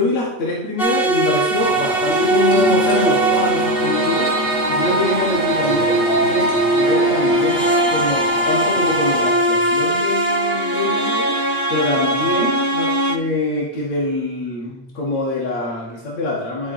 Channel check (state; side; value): late; right; 8.1 ms